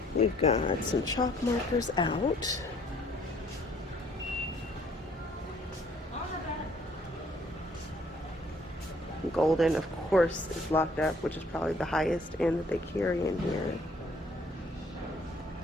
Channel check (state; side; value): normal; both; correlation 0.62